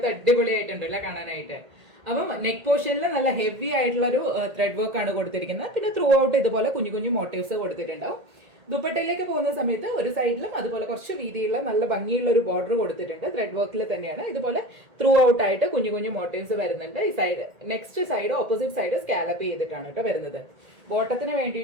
അടിപൊളിയായിട്ടുണ്ട് അല്ലെ കാണാനായിട്ട്. അപ്പം നെക്ക് പോർഷനിൽ നല്ല ഹെവി ആയിട്ടുള്ള ഒരു ത്രെഡ് വർക്ക് ആണ് കൊടുത്തിരിക്കുന്നത്. പിന്നെ ത്രൂ ഔട്ട് ഇതുപോലെ കുഞ്ഞു കുഞ്ഞു മോട്ടീവ്സ് കൊടുത്തിട്ടുണ്ടാവും. ദുപ്പട്ടയിലേക്ക് പോകുന്ന സമയത്ത് ഒരു സൈഡിലും അതുപോലെ കുറച്ച് വീതിയുള്ള നല്ല ഭംഗിയുള്ള ഒരു ബോർഡർ കൊടുത്തിട്ടുണ്ട്. ത്രെഡ് വർക്കിൽ തന്നെയാണ്. ഇതുപോലെ ത്രൂ ഔട്ട് ആയിട്ട് കുഞ്ഞു കുഞ്ഞു മോട്ടീവ്സ് വരുന്നുണ്ട്. ഈ side next side opposite side scallop ചെയ്തിട്ടാണ് കേട്ടോ വരുന്നത്. ബോട്ടത്തിന്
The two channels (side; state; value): left; late; 1.8 ms